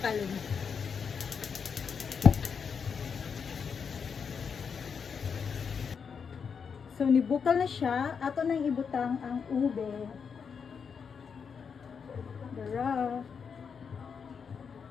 So, nibukal na siya. Ato nang ibutang ang ube. Dara.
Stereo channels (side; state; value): right; quieter; 6.3 dB